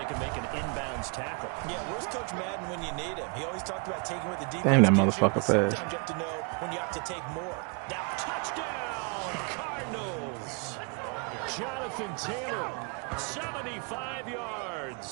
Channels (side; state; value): left; quieter; 35.0 dB